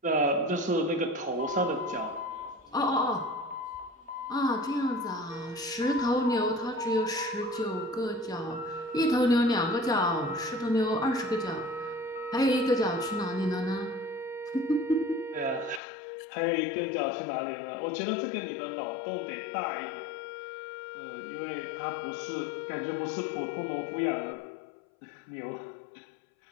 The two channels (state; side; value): drops out; right; at 15.8 s